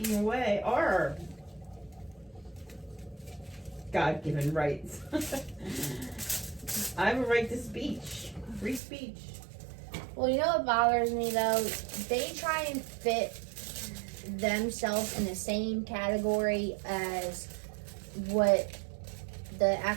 away our God-given rights. I have a right to speech. Free speech. Well, you know what bothers me, though? They try and fit themselves in the same category as what the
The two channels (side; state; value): left; drops out; at 8.8 s